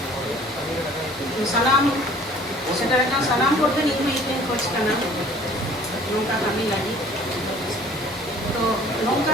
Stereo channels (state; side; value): normal; both; correlation 0.51